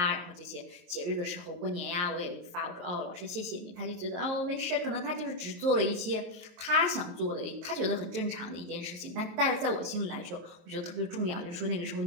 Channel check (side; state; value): left; late; 23 ms